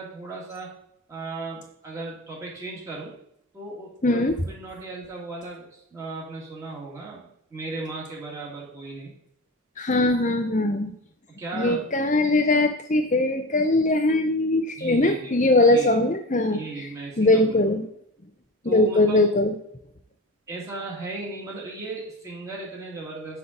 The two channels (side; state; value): both; normal; correlation 0.30